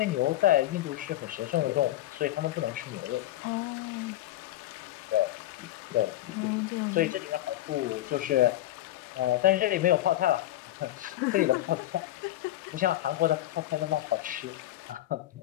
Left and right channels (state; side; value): quieter; right; 14.5 dB